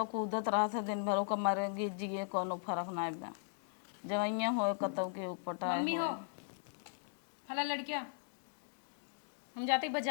कूदत रहा था दिन भर, ओका मरे गिर जिए कोनो फर्क नहीं बा। जवैया हो कतौ के उपटाए मम्मी हो हो। फला लड़किया हम जाते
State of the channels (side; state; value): right; silent; digital silence